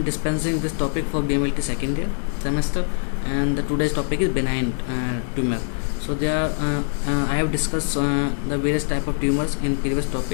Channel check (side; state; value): right; silent; digital silence